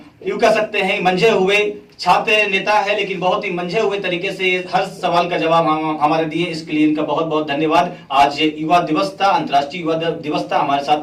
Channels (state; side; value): identical; both; correlation 1.00